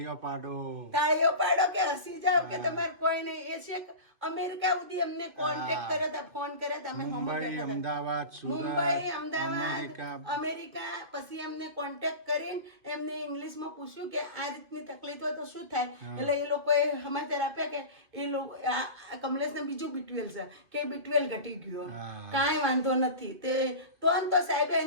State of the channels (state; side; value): late; left; 2.5 ms